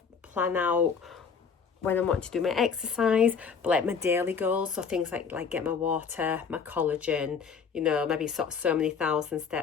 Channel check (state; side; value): quieter; right; 6.1 dB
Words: plan out when I want to do my exercise, but like my daily goals, so things like get my water, my collagen, you know, maybe sort of so many thousand